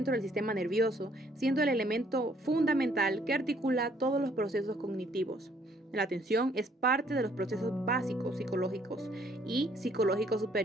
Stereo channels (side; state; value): both; normal; correlation 0.64